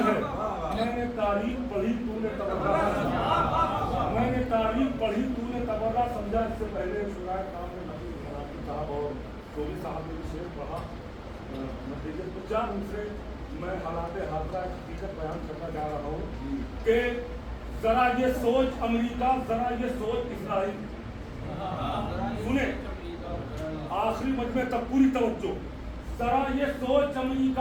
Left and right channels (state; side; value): identical; both; correlation 1.00